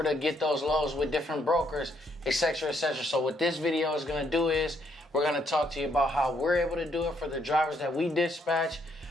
to get those loads with different brokers, etc., etc.? So what this video is going to do is we're going to talk to you about how we're able to do it for the drivers that we dispatch,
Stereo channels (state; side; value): normal; both; correlation 0.72